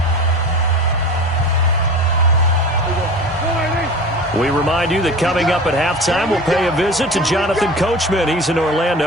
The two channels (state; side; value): normal; both; correlation 0.35